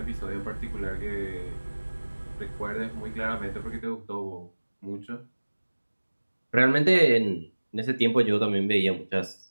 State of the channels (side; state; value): both; inverted; correlation -1.00